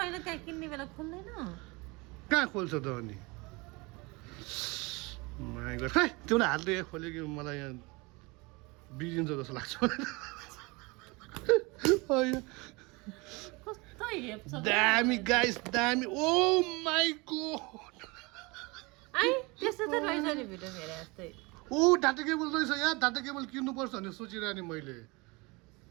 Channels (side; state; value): left; quieter; 26.0 dB